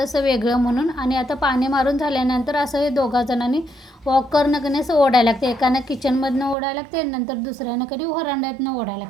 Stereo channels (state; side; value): drops out; left; at 6.6 s